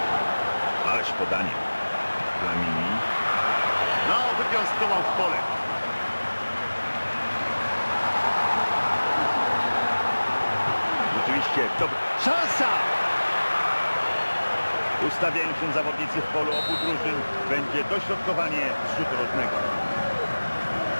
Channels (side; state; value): both; inverted; correlation -1.00